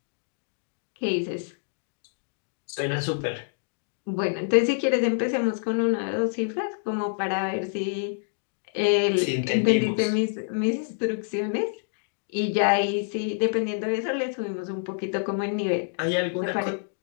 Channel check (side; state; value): right; silent; digital silence